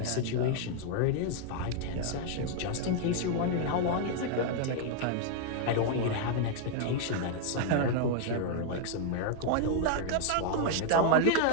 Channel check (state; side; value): different; both; correlation 0.00